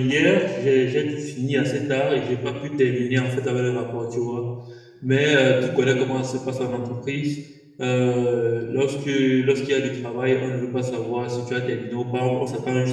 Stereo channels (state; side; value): identical; both; correlation 1.00